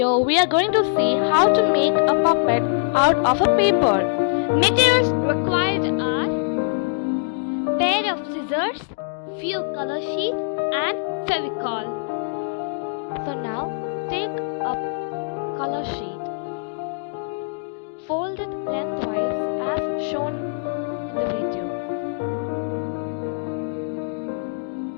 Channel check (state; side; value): silent; right; digital silence